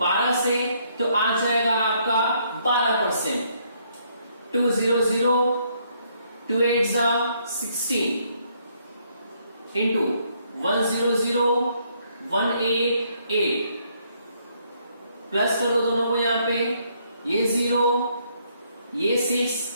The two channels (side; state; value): both; inverted; correlation -0.70